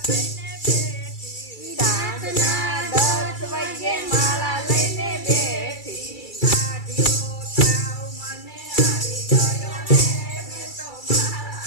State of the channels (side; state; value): right; late; 2.3 ms